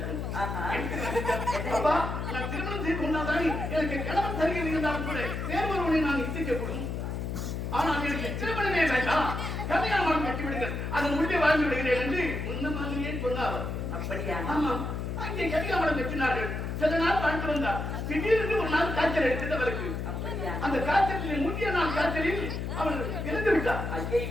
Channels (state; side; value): noise; left; hum, 4 dB below the sound